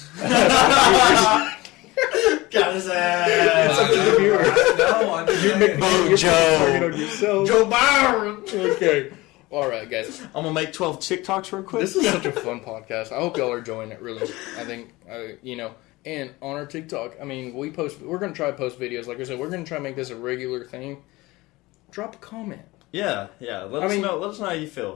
Got his It's ass. up to the viewer. No, I didn't. Vote Joe. Target on yourself. Joe Byron. Okay. All right, guys. I'm gonna make 12 TikToks real quick. This is such a fun podcast. I hope y'all are enjoying it. Really, I think And on our TikTok, I mean, we're gonna try to post videos. Like I said, we're gonna try to make this a regular thing. Drop a comment. Yeah. Let us know how you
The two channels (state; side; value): quieter; right; 20.6 dB